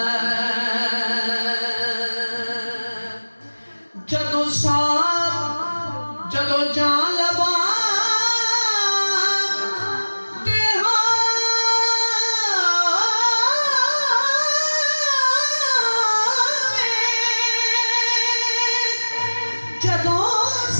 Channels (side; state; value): both; inverted; correlation -1.00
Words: جدو سانپ جدو جان لبا